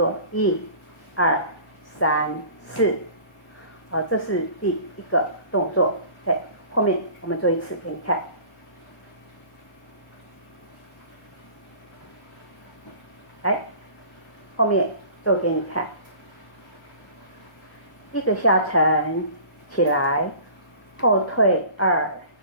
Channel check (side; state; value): right; late; 1.1 ms